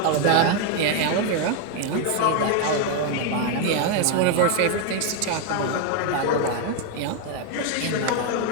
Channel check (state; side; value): different; both; correlation 0.01